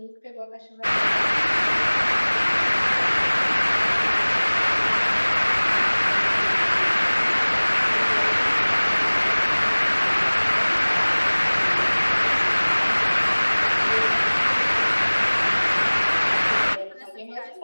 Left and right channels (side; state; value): both; inverted; correlation -1.00